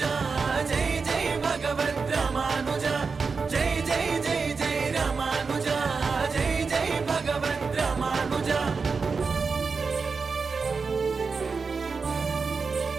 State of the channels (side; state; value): left; quieter; 4.8 dB